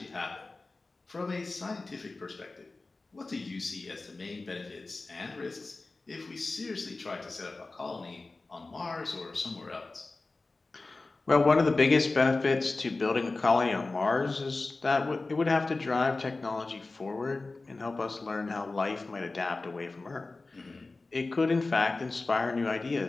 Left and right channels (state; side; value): quieter; right; 3.4 dB